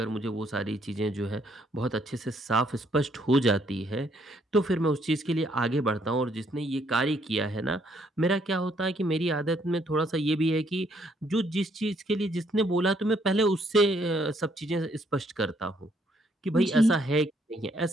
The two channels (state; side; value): normal; both; correlation 0.69